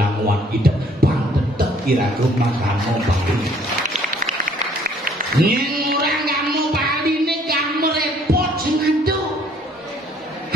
hidup Banten tetep kira-kira makamu Bali. Nyeng orang kamu Bali ini kamu repot sing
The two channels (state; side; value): normal; both; correlation 0.60